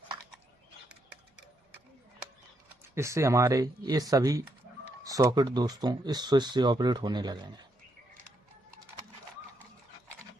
इससे हमारे ये सभी सॉकेट दोस्तों इस स्विच से ऑपरेट होने लगेंगे।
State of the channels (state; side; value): normal; both; correlation 0.78